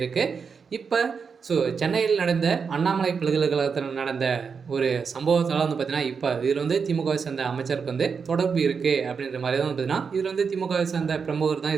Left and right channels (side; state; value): left; quieter; 5.8 dB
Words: இப்போ சென்னையில் நடந்த அண்ணாமலை பல்கலைக்கழகத்தில் நடந்த ஒரு சம்பவத்தால் பார்த்தீங்கன்னா, இப்போ இதில் திமுகவை சேர்ந்த அமைச்சருக்கு தொடர்பு இருக்குது அப்படின்ற மாதிரி தான் பார்த்தீங்கன்னா, இதில் திமுகவை சேர்ந்த பிரமுகர் தான்